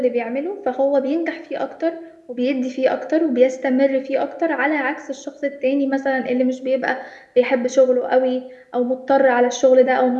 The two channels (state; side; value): identical; both; correlation 1.00